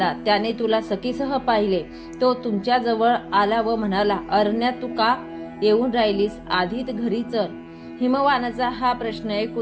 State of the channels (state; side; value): identical; both; correlation 1.00